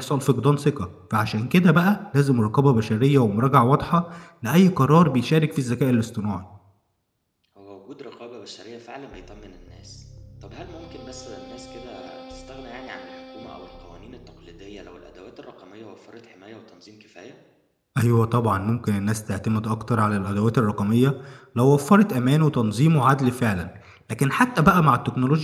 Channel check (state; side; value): identical; both; correlation 1.00